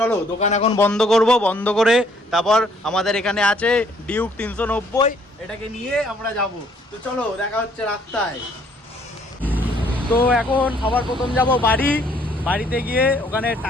দোকান এখন বন্ধ করব, বন্ধ করে তারপর আমাদের এখানে আছে ডিউক 390, এটাকে নিয়ে আমরা যাব। তো চলো, দেখা হচ্ছে রাস্তায়। তো এখন সবার প্রথম যাব বাড়িতে গিয়ে ওখানে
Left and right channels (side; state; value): both; normal; correlation 0.64